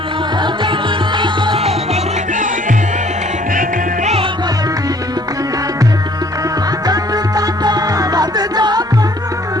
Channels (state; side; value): normal; both; correlation 0.59